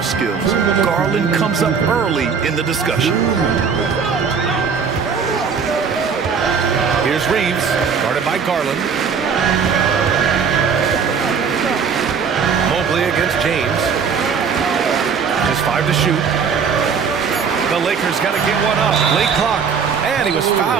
skills, Garland comes up early in the discussion. Here's Reeves, guarded by Garland. Mobley against James. Just 5 to shoot. The Lakers got to get one up. Late clock. And he was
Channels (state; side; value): quieter; left; 6.2 dB